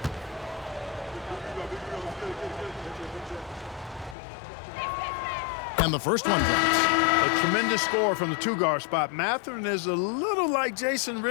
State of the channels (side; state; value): right; drops out; at 4.2 s